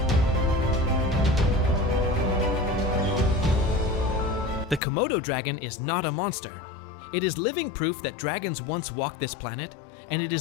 The Komodo dragon is not a monster. It is living proof that dragons once walked this planet, and it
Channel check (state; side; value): drops out; right; at 4.8 s